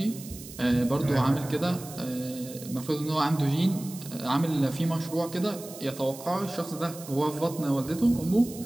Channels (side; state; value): right; noise; hiss, 15 dB below the sound